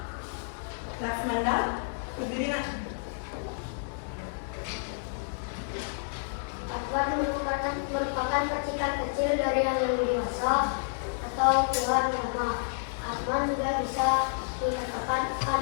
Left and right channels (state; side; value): silent; right; 58 dB below the other